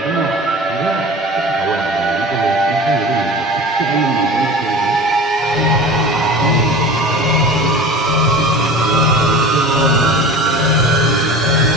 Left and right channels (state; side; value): normal; both; correlation 0.36